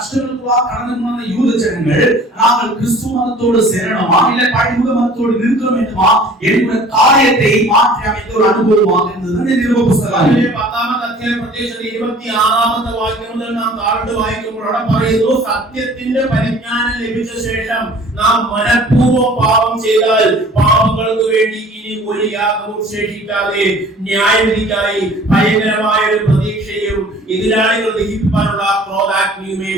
கடந்து போன யூத ஜனங்கள் நாங்கள் கிறிஸ்து மதத்தோடு சேரணுமா இல்ல பழைய மதத்தோடு நிற்க வேண்டுமா என்கிற காரியத்தை மாற்றி அமைத்த ஒரு அனுபவமாக இருந்தது இந்த நிருப புத்தகம். അതിലെ 10-ാമത്തെ അധ്യായം പ്രത്യേകിച്ച് 26-ാമത്തെ വാക്യം മുതൽ നാം താഴോട്ട് വായിക്കുമ്പോൾ അവിടെ പറയുന്നു, സത്യത്തിന്റെ പരിജ്ഞാനം ലഭിച്ച ശേഷം നാം മനഃപൂർവ്വം പാപം ചെയ്താൽ പാപങ്ങൾക്ക് വേണ്ടി ഇനി ഒരു യാഗവും ശേഷിക്കാതെ ന്യായവിധിക്കായി ഭയങ്കരമായ ഒരു പ്രതീക്ഷയും എതിരാളികൾ ദഹിപ്പിക്കാനുള്ള ക്രോധാഗ്നിയുമേ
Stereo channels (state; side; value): normal; both; correlation 0.49